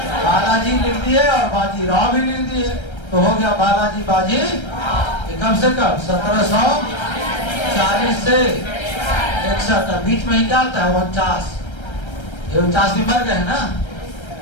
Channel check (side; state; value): right; late; 1.3 ms